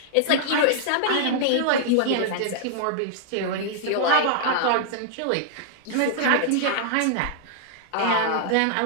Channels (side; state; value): both; different; correlation -0.01